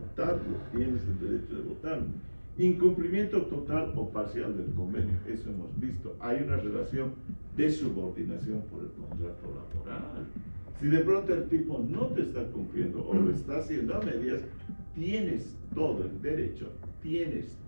tienes el derecho de votarlo. Incumplimiento total o parcial del convenio, eso hemos visto. Hay una relación de subordinación por el contrato laboral. Si de pronto el tipo no te está cumpliendo o lo está haciendo a medias, tienes todo el derecho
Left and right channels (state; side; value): inverted; both; correlation -1.00